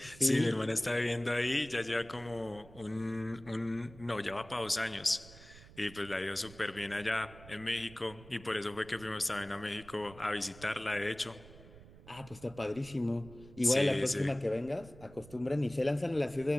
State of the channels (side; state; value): right; noise; rumble, 19 dB below the sound